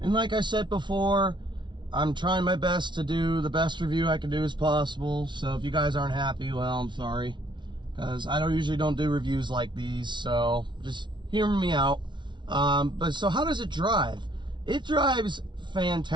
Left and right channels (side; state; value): left; late; 0.23 ms